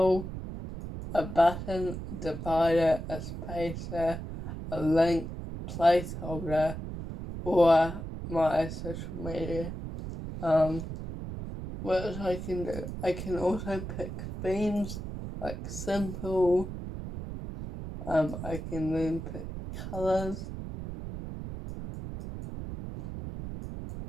a button, divider, a spacer, a link, placeholder, or my social media. What I can do, I can also pick themes like simple. I can then pick colors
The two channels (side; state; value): right; noise; rumble, 7 dB below the sound